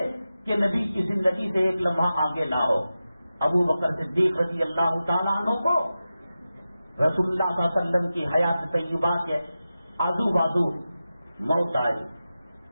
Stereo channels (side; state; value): both; inverted; correlation -0.93